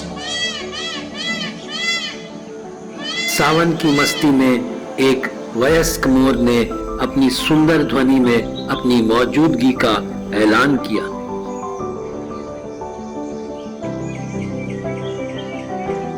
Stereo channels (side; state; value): both; identical; correlation 1.00